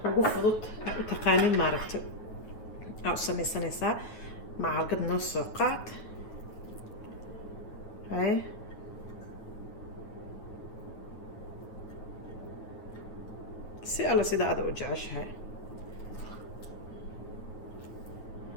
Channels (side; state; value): right; late; 9.3 ms